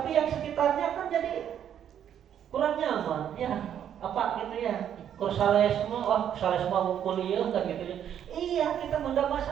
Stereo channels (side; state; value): left; quieter; 9.6 dB